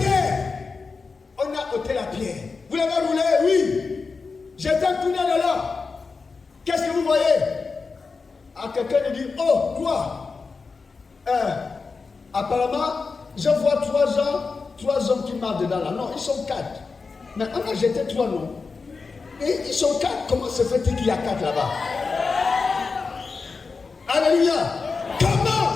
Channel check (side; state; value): right; quieter; 4.6 dB